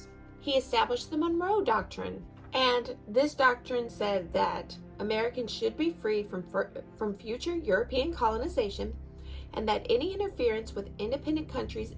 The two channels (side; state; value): both; identical; correlation 1.00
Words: He established the Monroe Doctrine, and this doctrine said that Americans should be free from future European colonization, and that any interference with independent countries